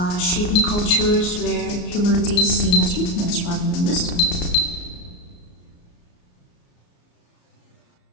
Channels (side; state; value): right; late; 34 ms